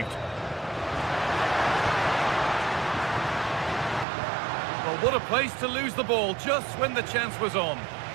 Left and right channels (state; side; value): drops out; left; at 4.0 s